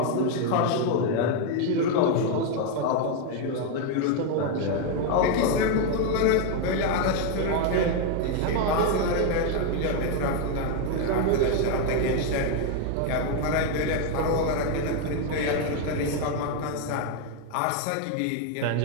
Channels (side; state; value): both; different; correlation 0.01